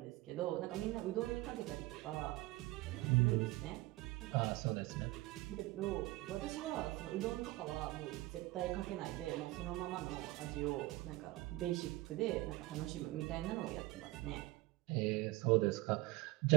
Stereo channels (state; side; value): quieter; left; 19.8 dB